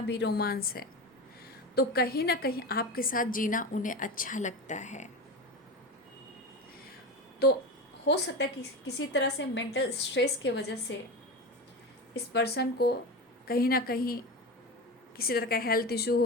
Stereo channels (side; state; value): both; normal; correlation 0.24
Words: भी रोमांस है। तो कहीं ना कहीं आपके साथ जीना उन्हें अच्छा लगता है। तो हो सकता है कि किसी तरह से मेंटल स्ट्रेस के वजह से इस पर्सन को कहीं ना कहीं किसी तरह का हेल्थ इशू